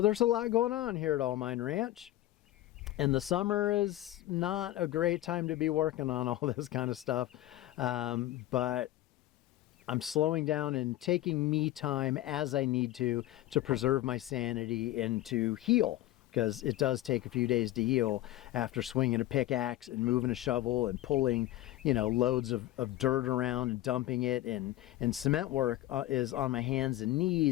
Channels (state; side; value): quieter; right; 15.2 dB